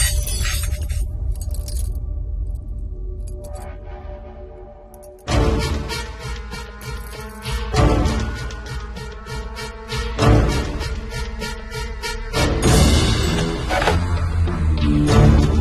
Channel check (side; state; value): both; identical; correlation 1.00